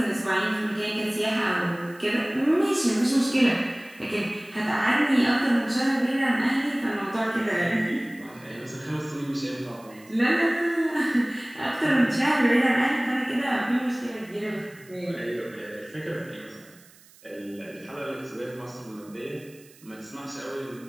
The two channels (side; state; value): right; noise; hiss, 25 dB below the sound